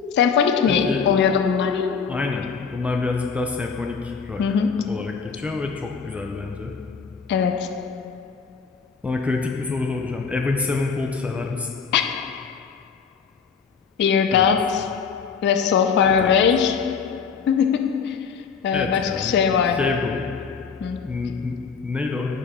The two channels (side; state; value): right; quieter; 5.9 dB